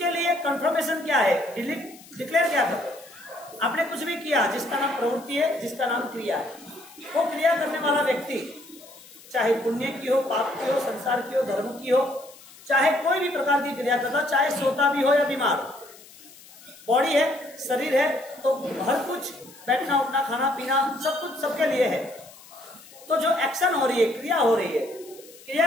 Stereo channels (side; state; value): left; noise; hiss, 21 dB below the sound